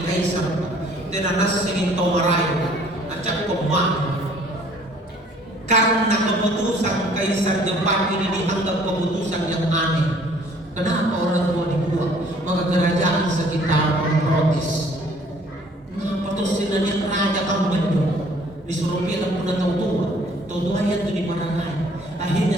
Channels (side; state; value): both; normal; correlation 0.57